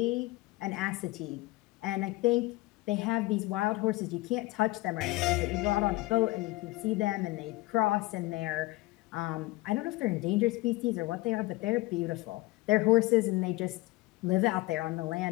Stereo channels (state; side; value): quieter; right; 20.1 dB